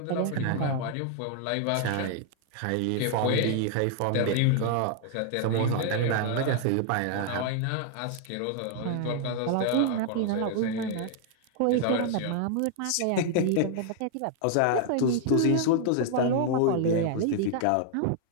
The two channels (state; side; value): different; both; correlation 0.00